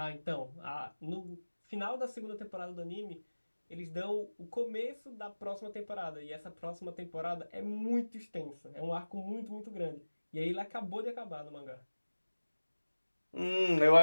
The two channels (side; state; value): both; inverted; correlation -1.00